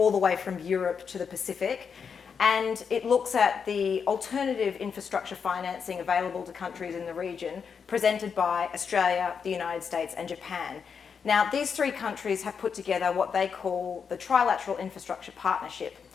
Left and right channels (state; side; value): quieter; right; 6.3 dB